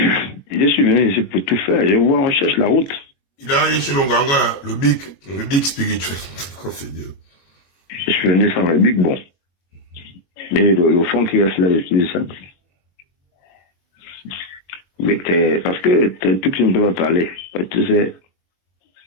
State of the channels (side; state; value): right; late; 22 ms